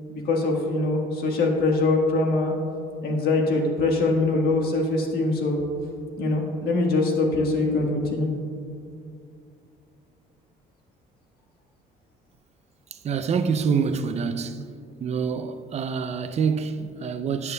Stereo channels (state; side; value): normal; both; correlation 0.50